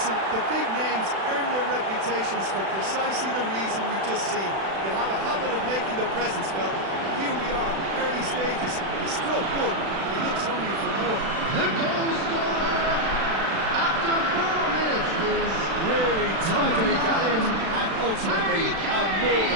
the big names earn their reputations for precisely the reason we've just seen. They have a habit of making their presence felt. Here we are, early stages. He struck one, and he looks hungry for more. The goal scorer after 4 minutes is Really tidily gathered, and ultimately a more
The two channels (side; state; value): left; late; 36 ms